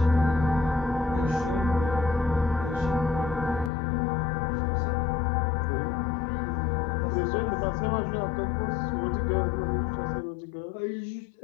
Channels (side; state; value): right; drops out; at 3.7 s